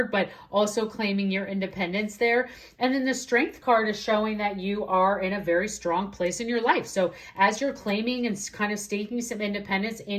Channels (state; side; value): identical; both; correlation 1.00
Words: but also claiming your independence there. And then the Strength card is showing that you are in a very strong place in your life. So as you're claiming and kind of staking some independence